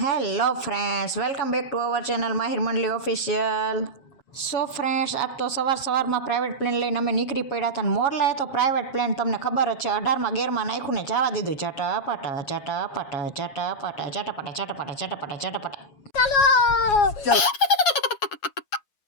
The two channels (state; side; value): late; right; 7.2 ms